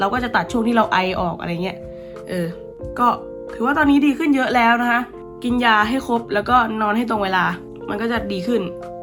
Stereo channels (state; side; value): identical; both; correlation 1.00